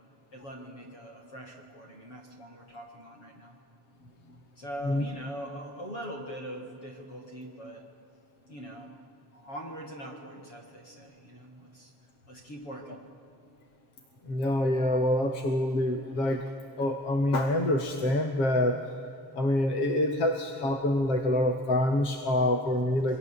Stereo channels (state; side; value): late; right; 7.4 ms